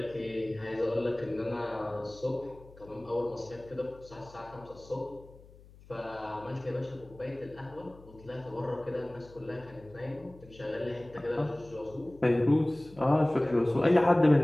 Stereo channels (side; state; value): left; noise; hum, 22 dB below the sound